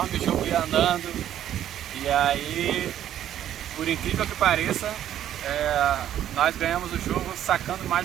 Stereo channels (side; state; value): left; quieter; 11.2 dB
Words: o jogo ia andando. E aí, por incrível que pareça, nós ganhamos o jogo sacando mais